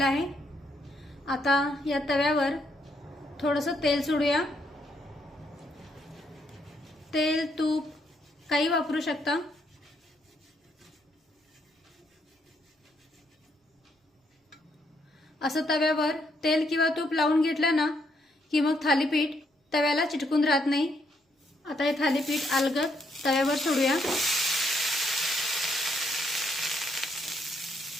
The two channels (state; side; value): normal; both; correlation 0.74